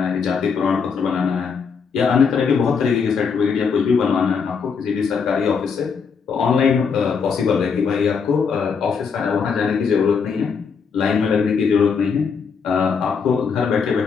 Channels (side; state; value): right; quieter; 5.9 dB